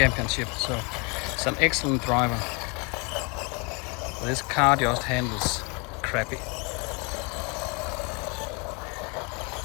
so it's an excellent driver. This car just handles crappy.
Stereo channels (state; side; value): quieter; right; 32.0 dB